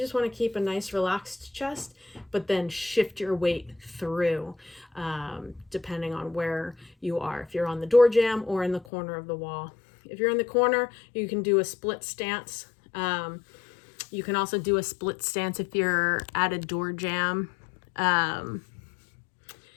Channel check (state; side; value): drops out; right; at 8.8 s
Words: want to keep a nice relaxed chest, but then shift your weight through, depending on where you are, if you're on the door jamb or in the corner of the wall. If you're in the corner, you can do a split stance. You can also do a split stance if you're at a door jamb.